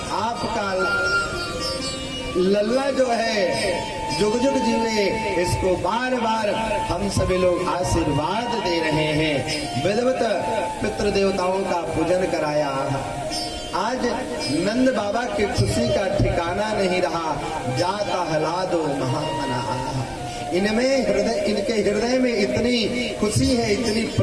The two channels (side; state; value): both; identical; correlation 1.00